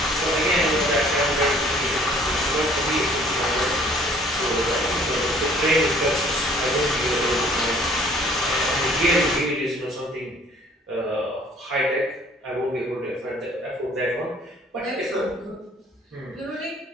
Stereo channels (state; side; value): normal; both; correlation 0.56